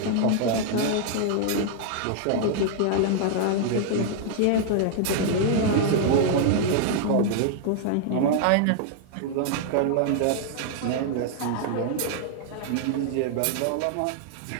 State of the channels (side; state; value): both; different; correlation -0.01